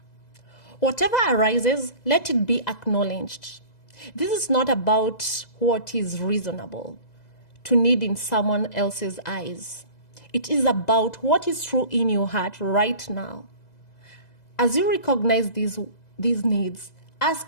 Whatever arises, let it be acknowledged. This is not about what is reasonable to need in someone else's eyes. It is about what is true in your heart right now. As you recognize these needs,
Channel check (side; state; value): right; late; 2.0 ms